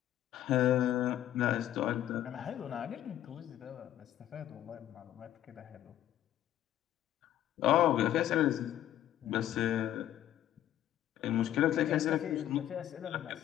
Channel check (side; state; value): right; quieter; 12.1 dB